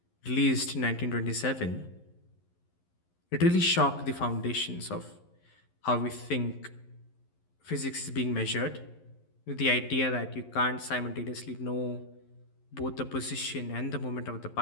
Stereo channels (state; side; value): late; right; 11 ms